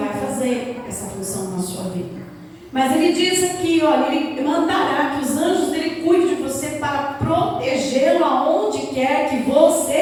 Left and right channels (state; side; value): identical; both; correlation 1.00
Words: fazer essa função na sua vida. Mas ele diz aqui, olha, ele mandará que os anjos dele cuidem de você para protegê-lo aonde quer que